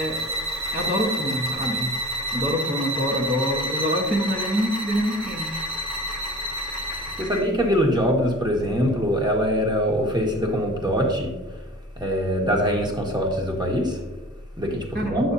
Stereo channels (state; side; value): normal; both; correlation 0.41